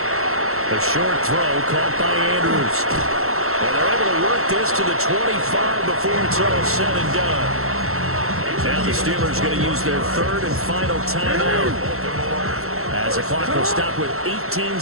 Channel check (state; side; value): late; left; 0.63 ms